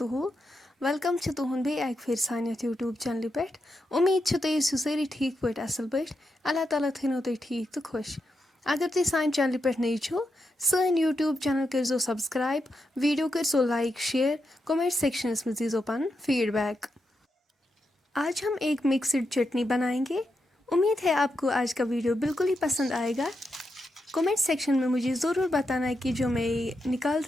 वेलकम छ तुहुंद बे एक फिर सानियत यूट्यूब चैनल पे उम्मीद छ तुम ٲسِو سٲری ٹھیٖک پٲٹھۍ اصل پٲٹھۍ اللہ تعالیٰ تھٲینو تُہۍ ٹھیٖک تہٕ خۄش اگر تُہۍ سانہِ چینلہِ پٮ۪ٹھ نٔے چھو سٲنۍ یوٗٹیوٗب چینل کٔرزیو سبسکرایب ویڈیو کٔرزیو لایک شیئر کومنٹ سیکشنس में दीजिए پنُن फीडबैक। आज हम एक मिक्सड चटनी बनाएंगे। उम्मीद है आपको आज का वीडियो बिल्कुल ही पसंद आएगा। कमेंट सेक्शन में मुझे ज़रूर बताना कि जो मैं निकाल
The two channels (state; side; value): normal; both; correlation 0.85